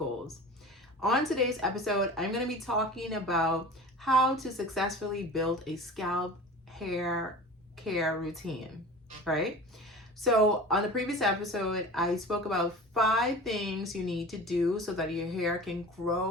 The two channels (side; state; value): both; normal; correlation 0.37